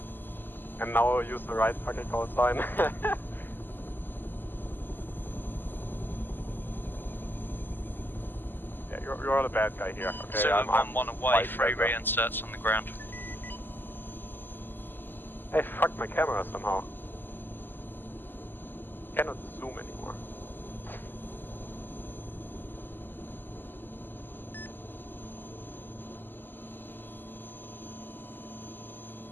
And now I'll use the right fucking call sign. Yeah, you're the bad guy here. Okay, Zulu I'm 1-1 away, 3 reinserts on the ground. I fucked my camera somehow. Cannot zoom anymore.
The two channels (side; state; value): right; late; 0.093 ms